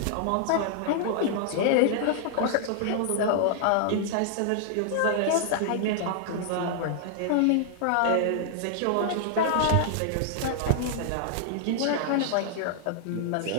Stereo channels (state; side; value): different; both; correlation -0.01